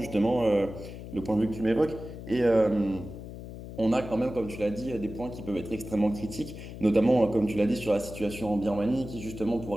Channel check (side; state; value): left; noise; hum, 11 dB below the sound